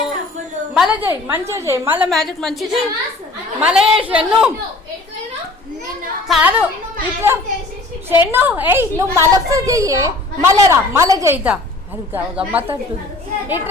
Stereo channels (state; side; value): quieter; right; 3.0 dB